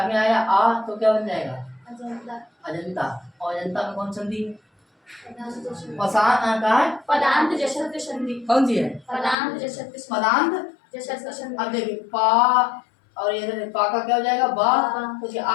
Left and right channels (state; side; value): drops out; right; at 9.3 s